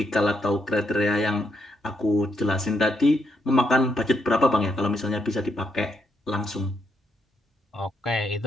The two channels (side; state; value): both; normal; correlation 0.78